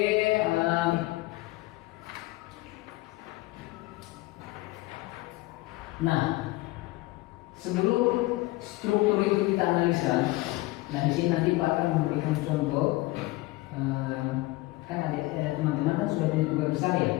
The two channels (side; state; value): right; quieter; 20.5 dB